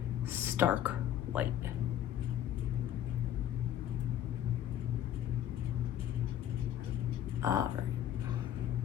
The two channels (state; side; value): quieter; right; 10.9 dB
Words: stark white. All right.